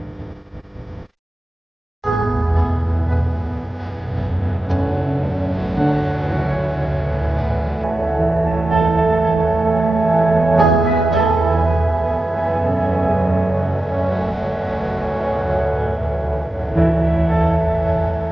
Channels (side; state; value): both; normal; correlation 0.93